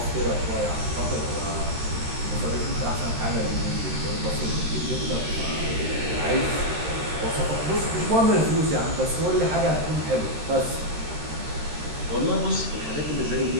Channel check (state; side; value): late; left; 13 ms